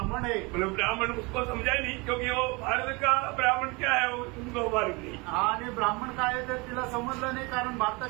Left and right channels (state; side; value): quieter; left; 27.0 dB